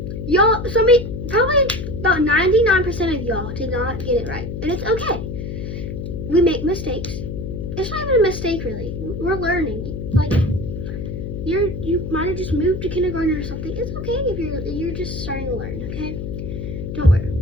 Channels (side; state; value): left; noise; hum, 6 dB below the sound